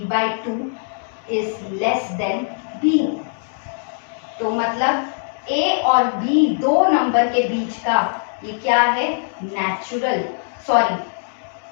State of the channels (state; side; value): silent; right; 65 dB below the other